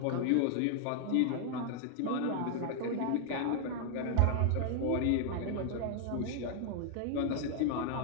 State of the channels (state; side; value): different; both; correlation 0.00